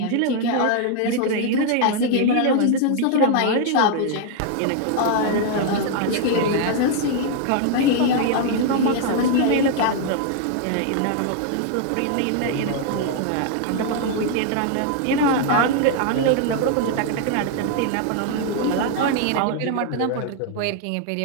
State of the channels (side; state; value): both; different; correlation 0.00